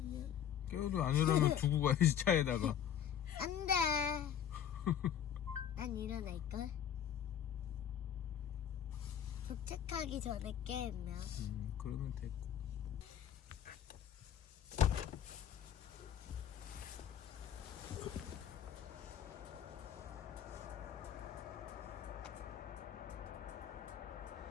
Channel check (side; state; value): right; quieter; 9.4 dB